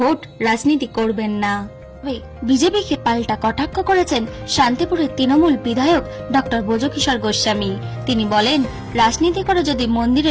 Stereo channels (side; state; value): both; identical; correlation 1.00